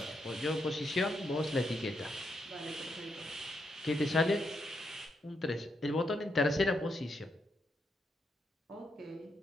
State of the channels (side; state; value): both; normal; correlation 0.81